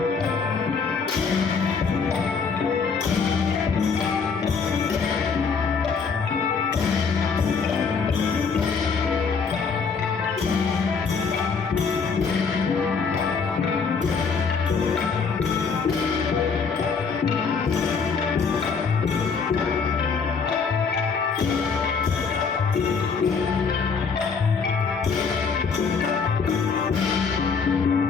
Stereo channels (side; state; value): right; quieter; 5.4 dB